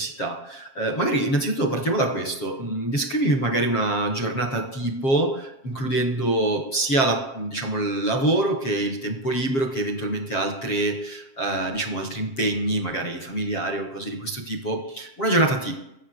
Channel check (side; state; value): right; late; 7.5 ms